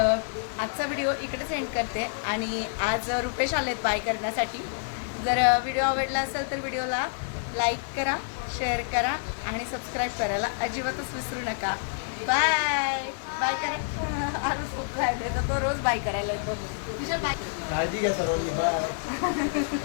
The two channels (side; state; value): right; silent; digital silence